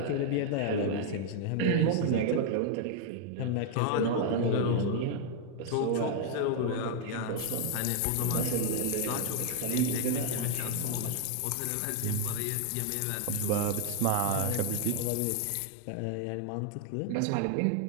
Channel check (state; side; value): different; both; correlation 0.00